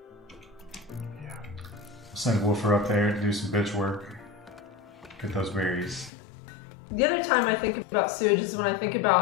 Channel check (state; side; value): drops out; right; at 6.1 s